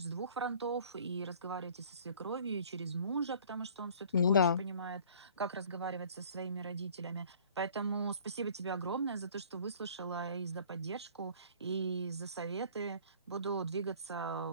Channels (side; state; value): both; inverted; correlation -0.51